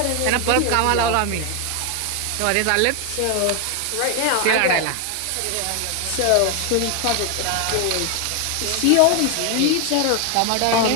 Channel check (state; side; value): different; both; correlation 0.01